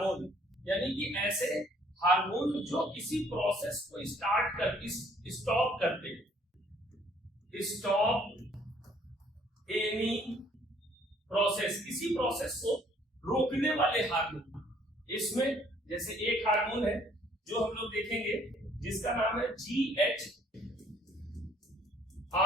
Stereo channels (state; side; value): normal; both; correlation 0.61